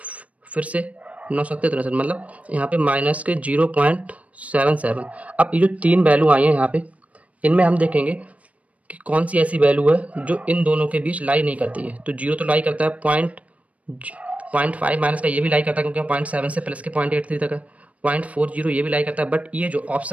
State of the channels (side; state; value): left; late; 0.066 ms